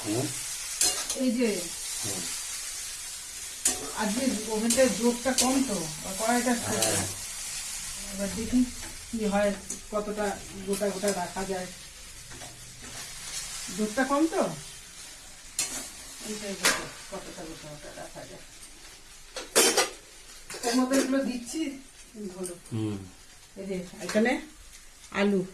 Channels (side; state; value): both; identical; correlation 1.00